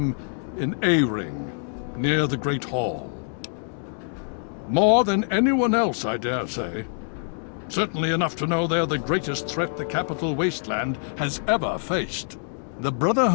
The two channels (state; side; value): silent; right; digital silence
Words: in A-Ring, near the Great Hall. More than anyone else, I dare say. Certainly enough to know they're the greatest threat the Capital Wasteland has ever faced. The